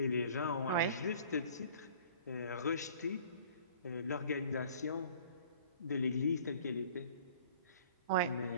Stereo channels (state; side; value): inverted; both; correlation -0.50